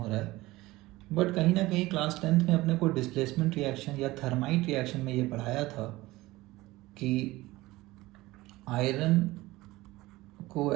रहा है। बट कहीं ना कहीं क्लास 10th में अपने को डिस्प्लेसमेंट रिएक्शन या थर्माइट रिएक्शन में ये पढ़ाया था कि आयरन को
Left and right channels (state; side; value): quieter; left; 19.1 dB